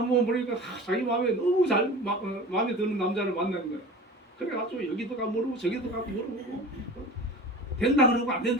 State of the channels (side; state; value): both; normal; correlation 0.37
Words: 보니까 자기 마음에 너무 마음에 드는 남자를 만난 거예요. 그래가지고 여기도 가 물어보고 저기도 가 물어보고 된다 그러고 안